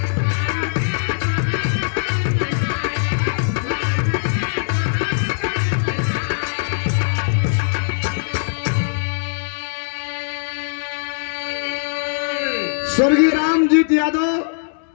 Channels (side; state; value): right; silent; digital silence